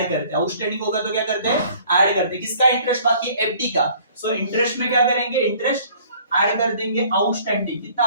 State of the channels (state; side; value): inverted; both; correlation -0.55